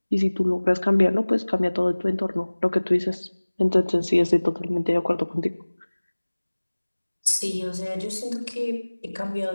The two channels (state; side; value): inverted; both; correlation -1.00